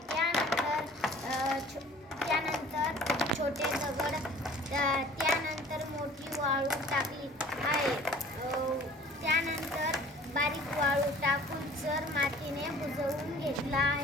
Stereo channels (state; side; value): normal; both; correlation 0.49